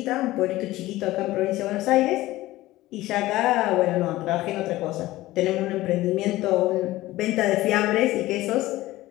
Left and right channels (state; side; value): quieter; right; 17.1 dB